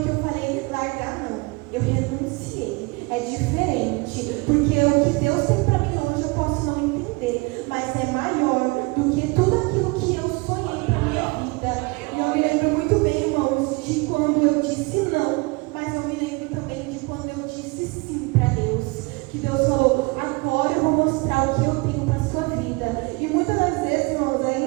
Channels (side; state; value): left; quieter; 26.8 dB